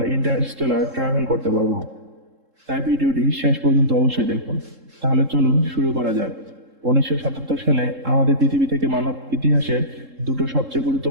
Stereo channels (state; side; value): late; left; 3.7 ms